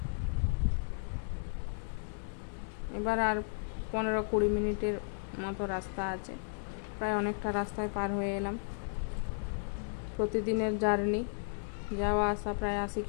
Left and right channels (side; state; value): right; silent; 55 dB below the other